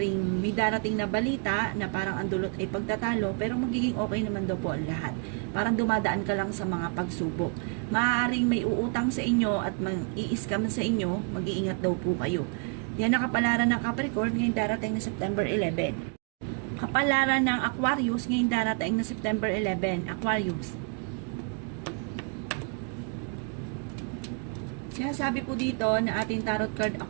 may darating na balita na parang ang dulot ay pagtatalo pero magiging okay naman daw po ang lahat. Parang dumadaan ka lang sa mga pagsubok. Maaaring may uutang sa inyo at mag-i-scam sa inyo, mag-iingat daw po kayo. Yan ang kapalaran ng Capricorn ngayong darating na September 11. Kapalaran ng Aquarius ngayong darating na September 11. Aquarius. Sinasabi po dito na ating tarot card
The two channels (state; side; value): quieter; left; 36.6 dB